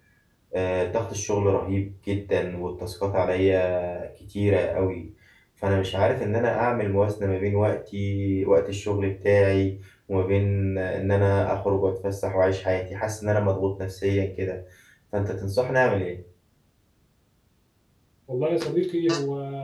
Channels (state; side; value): identical; both; correlation 1.00